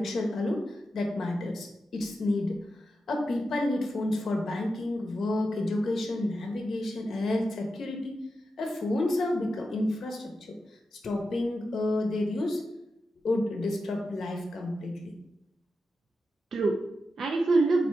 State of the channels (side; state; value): both; normal; correlation 0.89